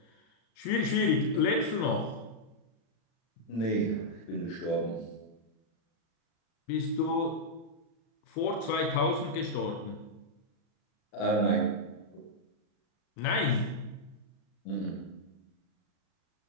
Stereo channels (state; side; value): late; right; 36 ms